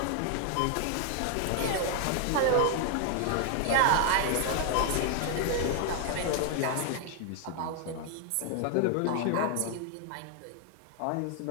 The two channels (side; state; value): both; different; correlation 0.00